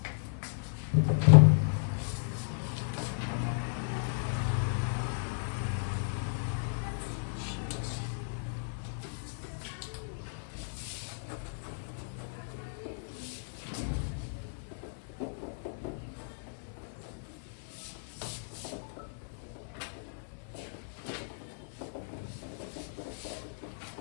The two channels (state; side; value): silent; right; 55 dB below the other